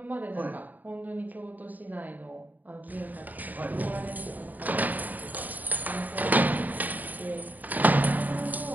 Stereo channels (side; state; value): left; late; 0.082 ms